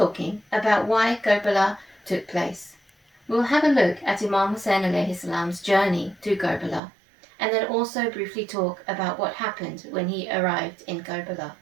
about why Karbala took place. We'll have a look at Imam Hussein alayhi salam's journey to Karbala, and then also briefly talk about what happened when he arrived in Karbala.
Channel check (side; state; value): left; drops out; at 6.8 s